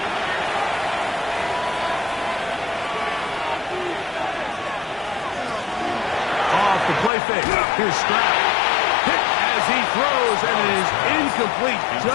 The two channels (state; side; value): drops out; right; at 7.1 s